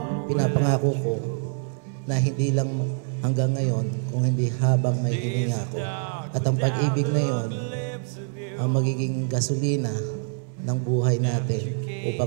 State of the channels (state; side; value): silent; left; 62 dB below the other